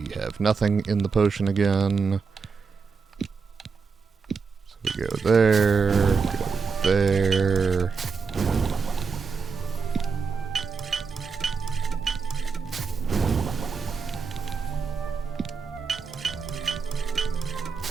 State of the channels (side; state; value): left; quieter; 5.3 dB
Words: have nothing in the potion again. So we go there, go there.